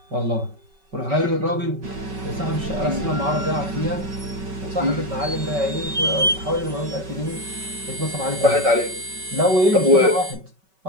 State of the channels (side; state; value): left; late; 5.3 ms